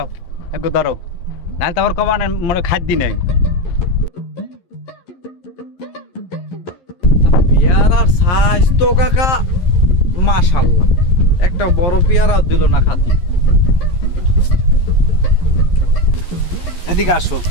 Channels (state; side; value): late; right; 11 ms